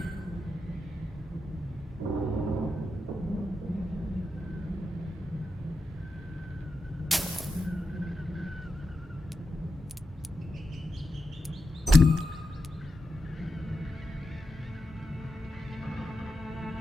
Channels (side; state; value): both; normal; correlation 0.88